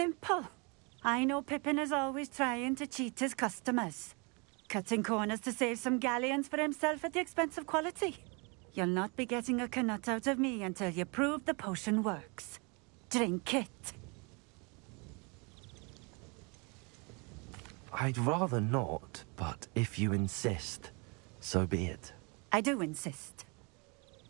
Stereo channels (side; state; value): left; quieter; 31.1 dB